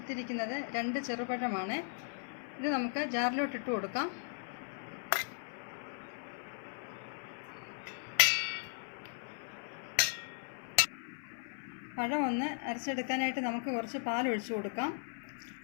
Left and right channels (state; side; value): silent; right; 53 dB below the other